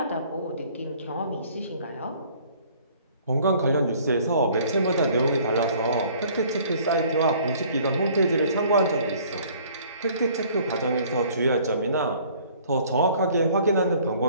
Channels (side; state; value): both; inverted; correlation -0.56